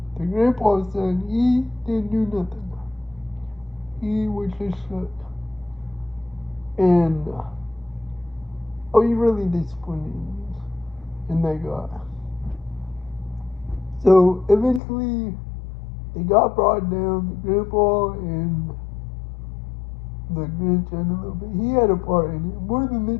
the grandpa's son, he didn't do nothing. He was just shook. And I was really disappointed in that guy. So eventually, they got brought down, the grandpa and the grandson a little bit. He had a part in it, more than the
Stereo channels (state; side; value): drops out; right; at 14.8 s